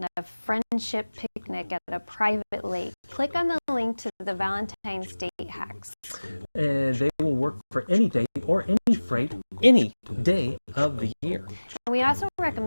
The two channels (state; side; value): inverted; both; correlation -1.00